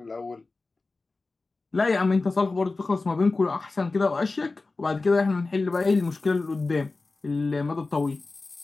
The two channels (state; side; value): quieter; right; 3.6 dB